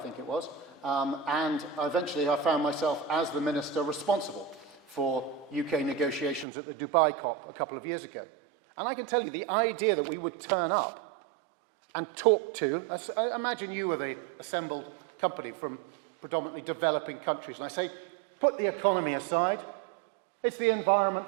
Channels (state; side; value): drops out; left; at 6.5 s